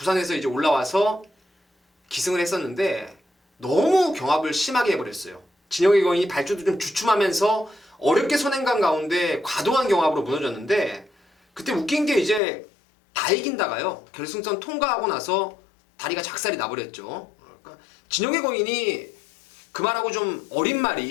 이제 올라와서 기승을 했었는데 너무 경합을 심하게 해버렸어요. 진영의 거인이 발주도 좀 주춤하면서 어렵게 선행간 가운데 과도한 경합으로 무너졌는데 그때 웃긴 게 이제 다 이긴다가요. 결승선 통과하고 나서 다리가 작살이 나버렸죠. 그러니까 진영의 거인이 그 말하고 좀 어린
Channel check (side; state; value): right; drops out; at 12.4 s